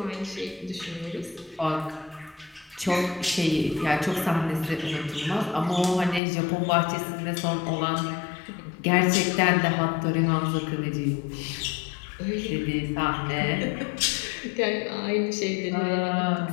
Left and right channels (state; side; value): drops out; right; at 6.2 s